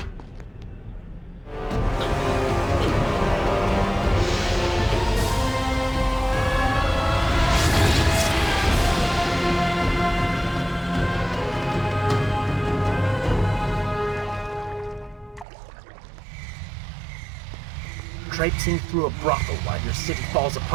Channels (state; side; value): drops out; left; at 15.5 s